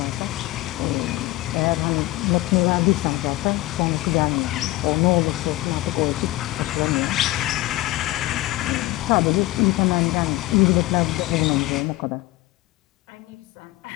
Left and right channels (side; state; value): right; quieter; 17.9 dB